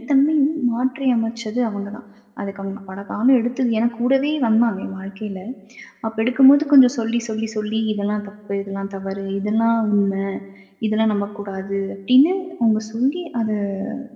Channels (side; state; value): both; identical; correlation 1.00